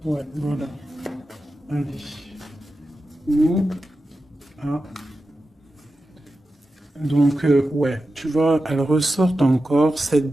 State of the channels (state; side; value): normal; both; correlation 0.92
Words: Ouais, voilà. Allez. Nous, ah. Donc, ouais, tu vois, elle ressort encore 7